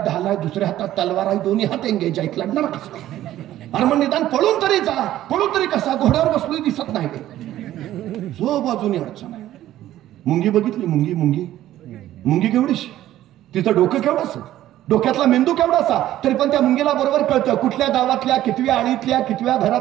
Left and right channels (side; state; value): left; quieter; 13.5 dB